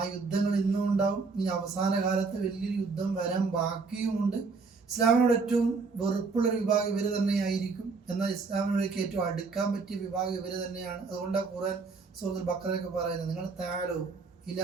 യുദ്ധങ്ങൾ ഇന്നും ഉണ്ടാവും. ഇനി അവസാന കാലത്ത് വലിയൊരു യുദ്ധം വരാൻ ബാക്കിയുമുണ്ട്. ഇസ്ലാമിനോട് ഏറ്റവും വെറുപ്പുള്ളൊരു വിഭാഗം ഇവർ തന്നെയായിരിക്കും. എന്നാൽ ഇസ്ലാമിനോടേക്ക് ഏറ്റവും അടുക്കാൻ പറ്റിയ വിഭാഗം ഇവർ തന്നെയാണ്. അതുകൊണ്ടാണ് ഖുർആൻ സൂറത്തുൽ ബഖറയൊക്കെ പറയുന്നത്, നിങ്ങൾ താലോ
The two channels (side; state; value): left; quieter; 4.5 dB